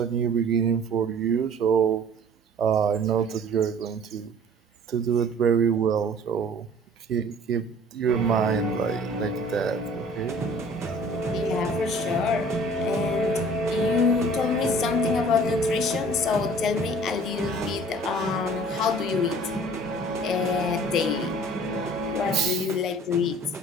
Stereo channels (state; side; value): normal; both; correlation 0.49